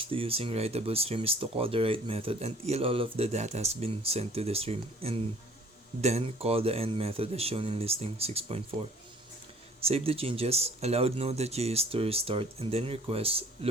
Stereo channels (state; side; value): normal; both; correlation 0.54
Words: to using writable stream is to call the write method until all of the data has been sent to the stream, and Then call the end method as shown in listing 6.4. Save the changes, allow Node.js to restart, and then request